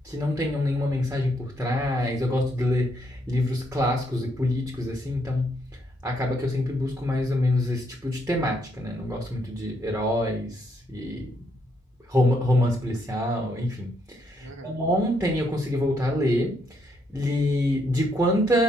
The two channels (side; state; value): both; normal; correlation 0.74